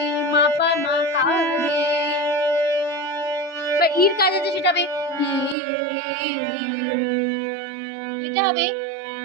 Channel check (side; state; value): left; drops out; at 5.6 s